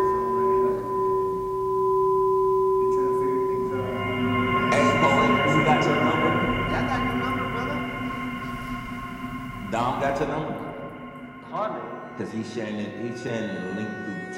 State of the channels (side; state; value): both; identical; correlation 1.00